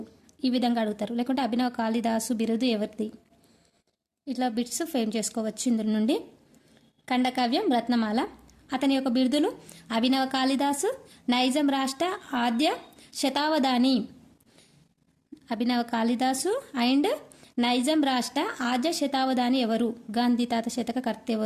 ఈ విధంగా అడుగుతారు. లేకుంటే అభినవ కాళిదాసు బిరుదు ఎవరిది? ఇట్లా బిట్స్ ఫేమ్ చేసుకోవచ్చు ఇందులో నుండి. ఖండకావ్యం రత్నమాల. అతని యొక్క బిరుదులు అభినవ కాళిదాసు, నైజాం రాష్ట్ర ఆద్య శతావధాని. అభినవ కాళిదాసు అండ్ నైజాం రాష్ట్ర ఆద్య శతావధాని ఎవరు? గాంధీ తాత శతక కర్త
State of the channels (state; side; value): identical; both; correlation 1.00